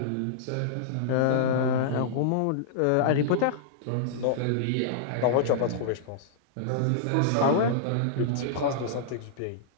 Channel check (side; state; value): both; different; correlation -0.02